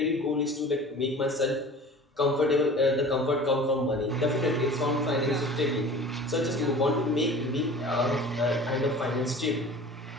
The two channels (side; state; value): both; normal; correlation 0.41